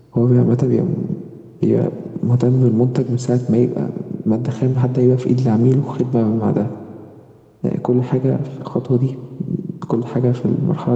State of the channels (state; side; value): identical; both; correlation 1.00